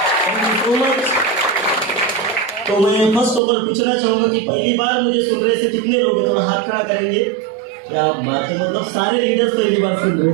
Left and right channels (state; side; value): drops out; left; at 3.4 s